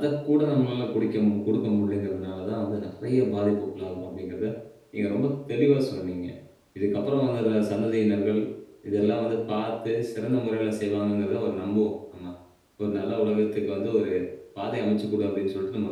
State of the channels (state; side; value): identical; both; correlation 1.00